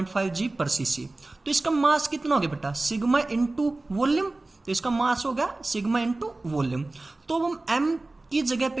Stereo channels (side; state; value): left; quieter; 3.0 dB